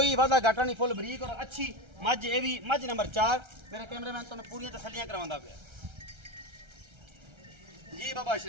वादा घाटा नहीं, फुल बरीक और अच्छी मज। ये भी मज नंबर 4 मेरा कैमरामैन तुहानूं पूरी तसल्लियां करवांदा पिया जी। बाबा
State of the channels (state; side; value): late; left; 1.3 ms